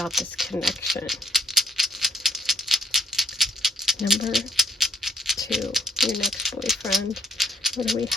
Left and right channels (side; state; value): both; normal; correlation 0.63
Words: this connection. Number 2, your next boyfriend. What do we